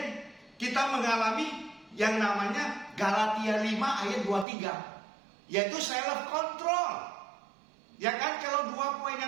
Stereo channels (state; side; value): drops out; left; at 4.5 s